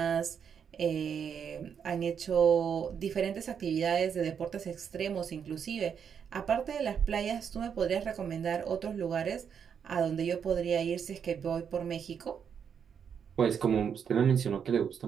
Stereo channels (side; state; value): left; quieter; 7.4 dB